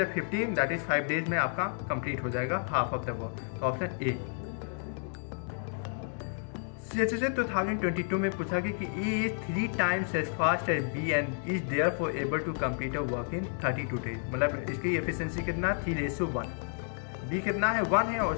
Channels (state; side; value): silent; right; 55 dB below the other